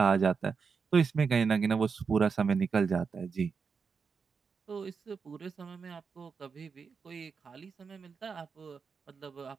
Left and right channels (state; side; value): quieter; left; 5.6 dB